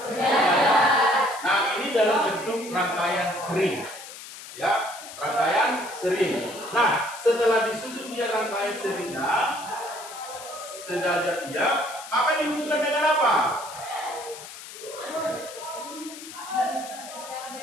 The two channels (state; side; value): noise; left; hiss, 14 dB below the sound